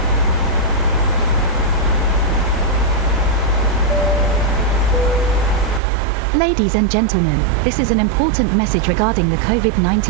Ladies and gentlemen, this is an important message regarding the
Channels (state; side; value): drops out; left; at 5.8 s